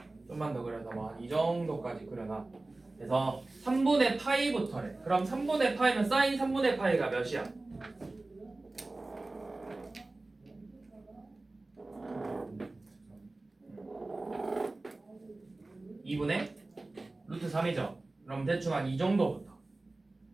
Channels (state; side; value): quieter; left; 3.1 dB